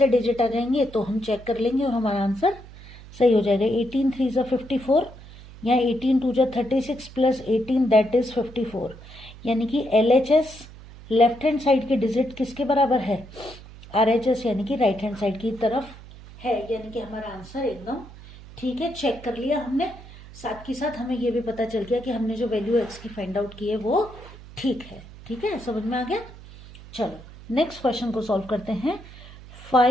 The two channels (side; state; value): right; noise; hum, 18 dB below the sound